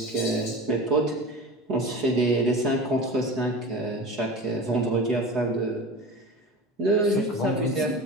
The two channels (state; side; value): normal; both; correlation 0.32